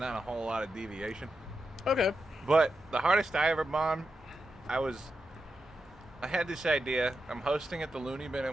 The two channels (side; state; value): both; normal; correlation 0.88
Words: a whole lot of deviation. Okay. But the hardest I ever bombed, I had this idea. I'm hosting at the Looney Bin